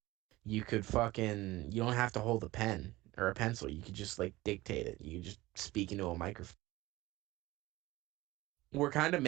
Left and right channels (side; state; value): left; quieter; 19.0 dB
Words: you could you don't have to hold a pen or a pencil. You could just like dictate it. You could just speak into a microphone. We're kind of